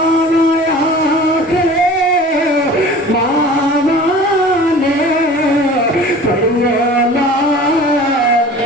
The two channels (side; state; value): both; normal; correlation 0.42